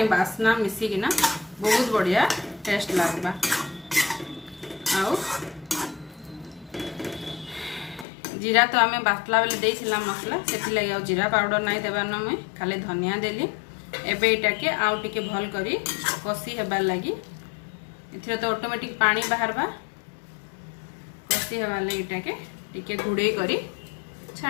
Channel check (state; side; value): drops out; right; at 8.1 s